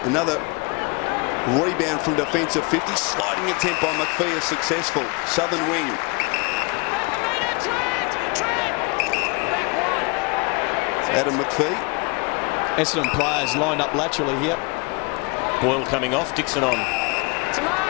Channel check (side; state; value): right; quieter; 28.2 dB